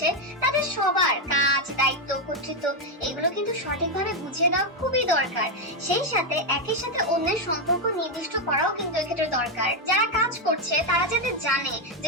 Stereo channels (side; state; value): both; normal; correlation 0.04